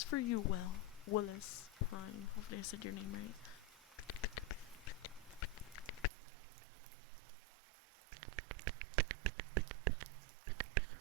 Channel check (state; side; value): drops out; left; at 6.1 s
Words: for you, Will. Willis Prime. Hopefully I said your name right.